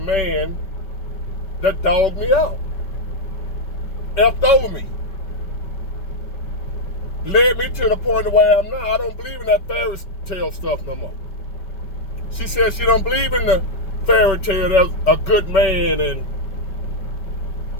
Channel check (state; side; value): late; right; 5.2 ms